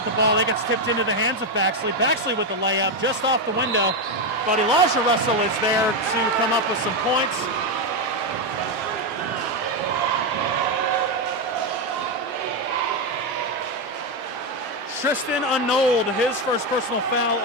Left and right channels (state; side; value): normal; both; correlation 0.07